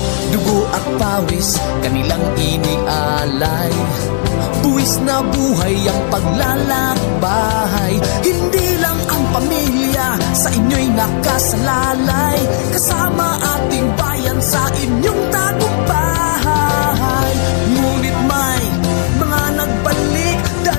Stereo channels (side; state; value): right; silent; digital silence